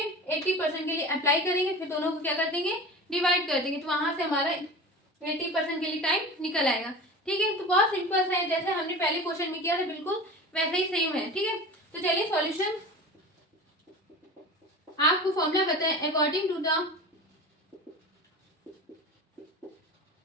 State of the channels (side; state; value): both; normal; correlation 0.33